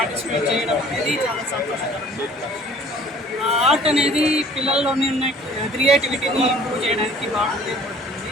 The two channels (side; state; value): both; normal; correlation 0.52